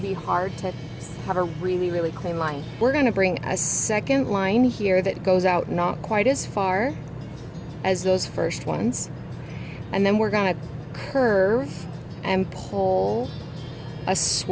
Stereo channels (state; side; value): identical; both; correlation 1.00